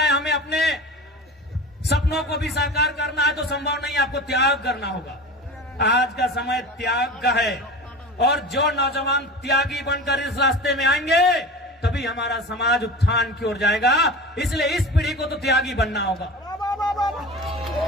हमें अपने सपनों को भी साकार करना है, तो संभव नहीं, आपको त्याग करना होगा। आज का समय त्याग का है, और जो नौजवान त्यागी बनकर इस रास्ते में आएंगे, तभी हमारा समाज उत्थान की ओर जाएगा। इसलिए इस पीढ़ी को तो त्यागी बनना होगा।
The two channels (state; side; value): normal; both; correlation 0.33